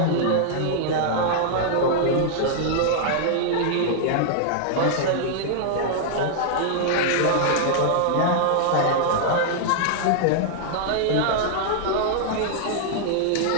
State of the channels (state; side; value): different; both; correlation -0.01